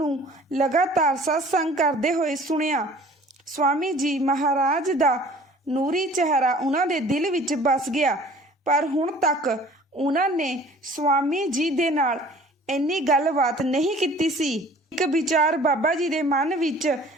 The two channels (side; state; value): both; normal; correlation 0.49